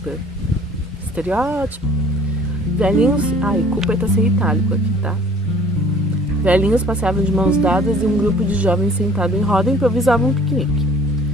Estereótipo. Velhinhos... Ai, Cooper tá sem itálico aqui, tá? Velhinhos passeavam de mãos dadas e um grupo de jovens sentado em roda improvisavam um piquenique.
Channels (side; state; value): both; normal; correlation 0.52